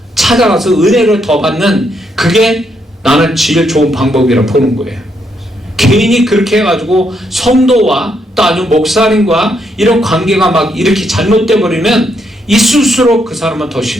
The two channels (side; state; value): both; normal; correlation 0.76